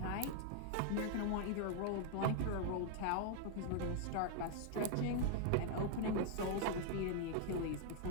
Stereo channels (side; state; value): both; different; correlation 0.00